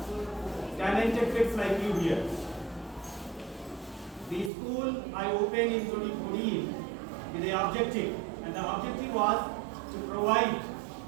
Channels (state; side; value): drops out; left; at 4.5 s